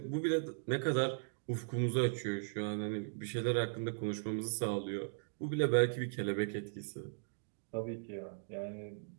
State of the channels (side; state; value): left; silent; digital silence